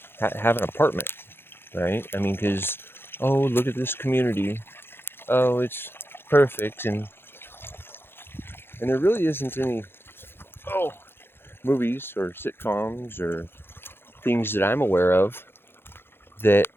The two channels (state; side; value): late; right; 0.11 ms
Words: have an apartment, right? I mean, because, oh, look at this community. Oh, it's perfect. And there really isn't any, movies or sitcoms or things that I'm aware of that